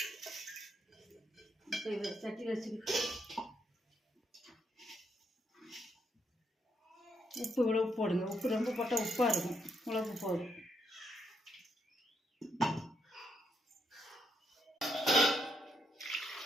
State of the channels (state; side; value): normal; both; correlation 0.77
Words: இப்போ இதை சட்டியில் வச்சுக்கிட்டு உப்பு இவ்வளவு போடுங்க. உப்பு ரொம்ப போட்டால் உப்பாக இருக்கும். இவ்வளவு போதும்.